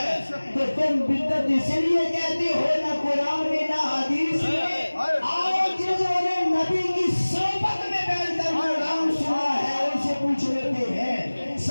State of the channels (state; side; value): inverted; both; correlation -1.00